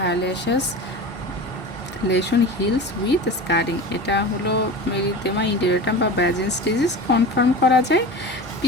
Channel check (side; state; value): both; normal; correlation 0.32